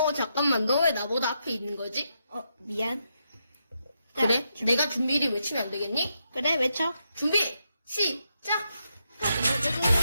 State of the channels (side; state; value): both; inverted; correlation -0.82